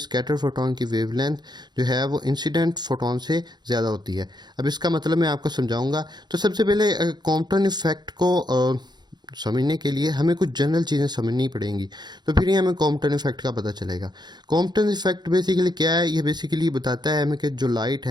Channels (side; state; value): left; late; 0.21 ms